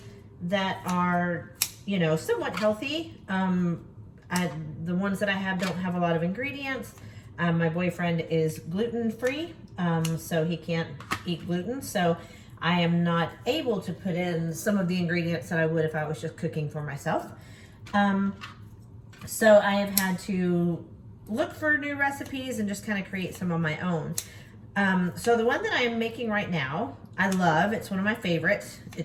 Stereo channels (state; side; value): identical; both; correlation 1.00